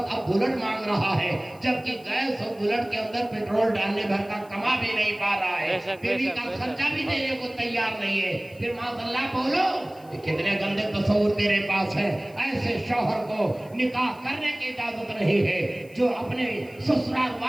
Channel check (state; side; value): noise; left; hiss, 27 dB below the sound